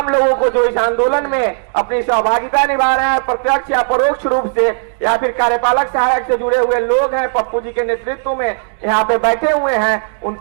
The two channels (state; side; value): silent; left; digital silence